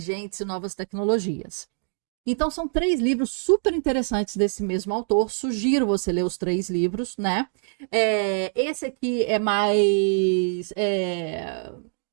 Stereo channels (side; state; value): left; silent; digital silence